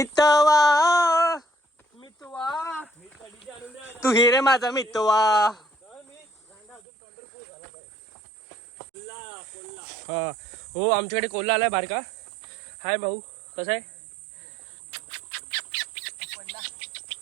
तू हिरे माझा मितवा. हा हो आमच्याकडे कोल्हा आलाय बारका. हाय भाऊ कसा आहे.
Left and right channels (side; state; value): left; drops out; at 6.8 s